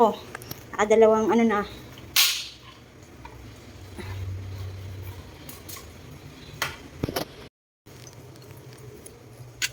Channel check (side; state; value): both; identical; correlation 1.00